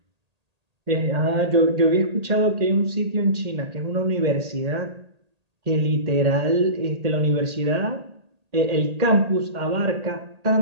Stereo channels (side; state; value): left; late; 1.8 ms